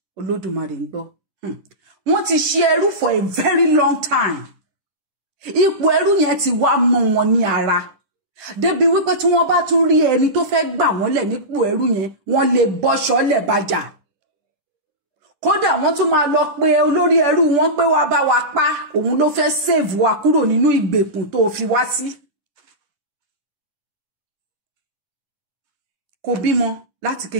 Olódùmarè ń gbọ́. Wọ́n ti ṣe ẹrú for a very long time. Ipò ẹrú yẹn ti wá mọ́ wọn ní ara. Débi wípé tí wọ́n bá tún rí ẹni tó fẹ́ gbà wọ́n lẹ̀ nípò ẹrú yẹn, wọ́n lè bọ́ṣọ́ lẹ̀ bàjà. Kódà wọ́n tún máa lọ pé olórí ẹrú wọn pé wá bá wa pa, òun ló fẹ́ save wa kúrò nínú ìgbèkùn tó fi wá sí. Kò bímọ láti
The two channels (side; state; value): left; late; 10 ms